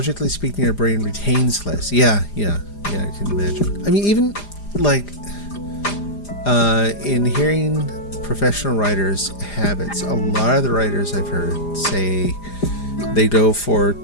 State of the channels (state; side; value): late; right; 4.9 ms